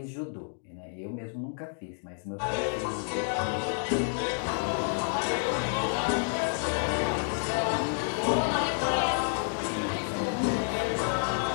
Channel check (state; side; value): silent; right; digital silence